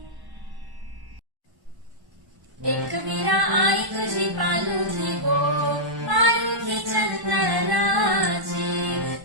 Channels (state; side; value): late; left; 1.1 ms